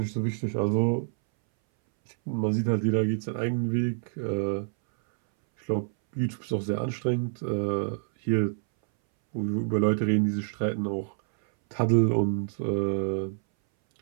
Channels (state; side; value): silent; left; 60 dB below the other